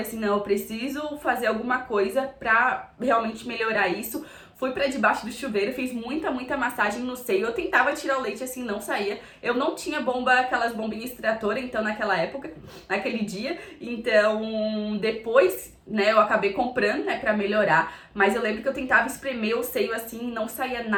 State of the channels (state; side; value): identical; both; correlation 1.00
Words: assim, não, eu preciso fazer alguma coisa pra realmente melhorar isso. Fui pra debaixo do chuveiro, fiz muita, muita massagem no seio. Eu tentava tirar o leite, assim, não saía. Eu não tinha aquelas bombinhas extratoras, então, naquela época, naquele dia. Então, depois, né, eu acabei comprando, né, pra melhorar. Mas eu lembro que eu tentava espremer o seio, assim, não saía